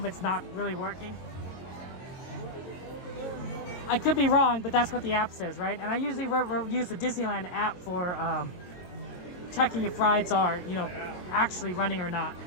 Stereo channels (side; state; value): right; late; 22 ms